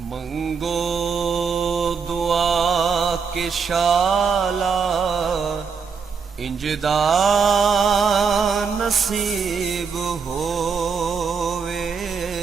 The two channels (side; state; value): left; quieter; 5.8 dB